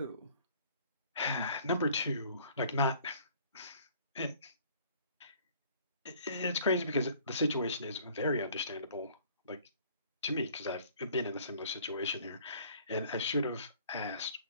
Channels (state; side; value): inverted; both; correlation -0.54